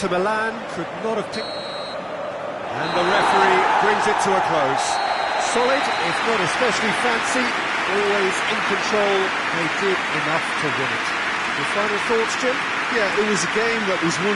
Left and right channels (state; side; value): identical; both; correlation 1.00